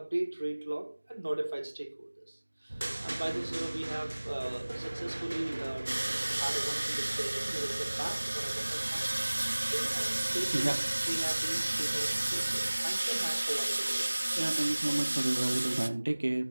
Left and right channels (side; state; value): both; inverted; correlation -1.00